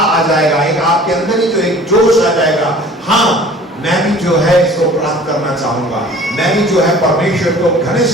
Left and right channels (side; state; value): both; normal; correlation 0.47